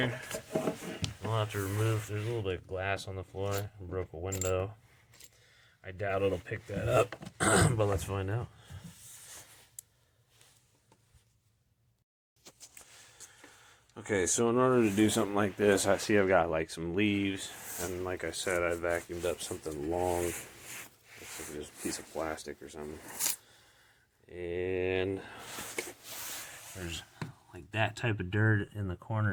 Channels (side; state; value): both; identical; correlation 1.00